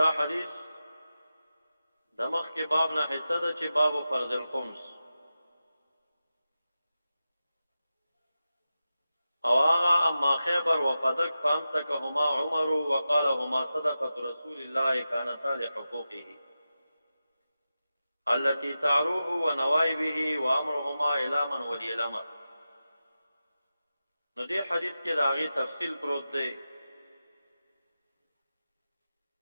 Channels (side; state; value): both; inverted; correlation -0.92